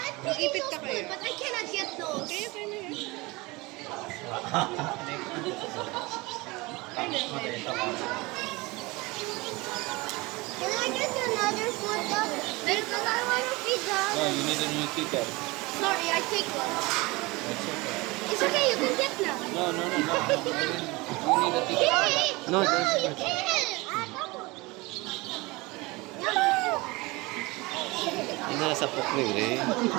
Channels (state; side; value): quieter; left; 23.5 dB